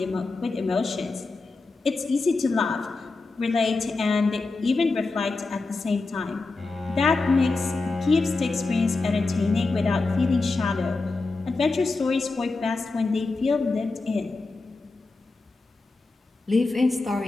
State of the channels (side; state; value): right; quieter; 3.6 dB